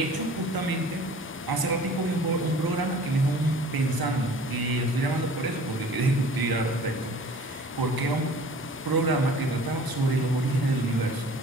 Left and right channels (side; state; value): both; normal; correlation 0.47